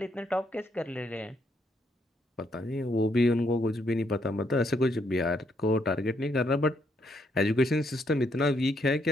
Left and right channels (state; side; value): normal; both; correlation 0.74